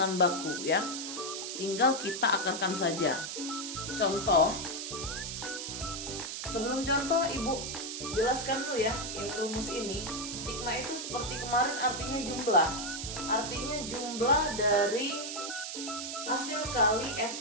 baku ya. Tinggal kita akarkan saja. Contoh. Sebelum contoh Ibu jelaskan dulu ya yang rumus ini. Sigma itu seperti kemarin artinya jumlah. Artinya jumlah dari hasil kali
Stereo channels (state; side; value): noise; right; hiss, 5 dB below the sound